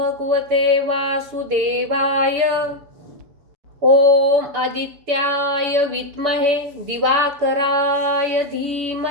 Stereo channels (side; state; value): left; late; 7.0 ms